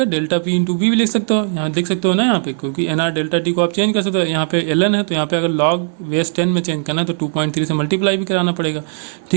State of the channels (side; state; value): left; silent; digital silence